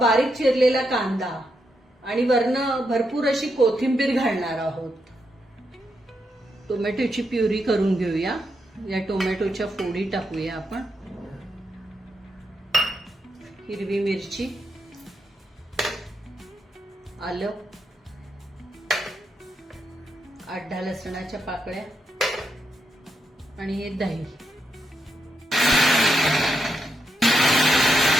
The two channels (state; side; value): normal; both; correlation 0.83